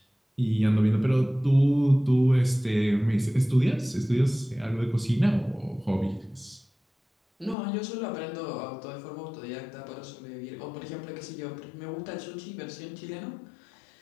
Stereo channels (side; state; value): right; drops out; at 7.6 s